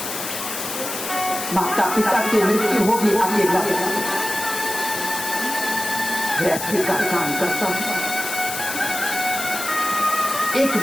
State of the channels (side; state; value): left; noise; hiss, 6 dB below the sound